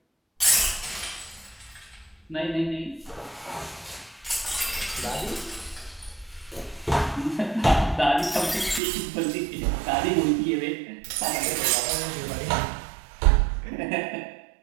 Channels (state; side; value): drops out; left; at 8.8 s